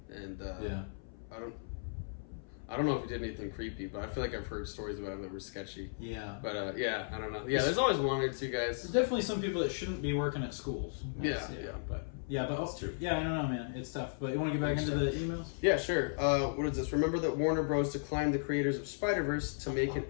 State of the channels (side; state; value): right; silent; 54 dB below the other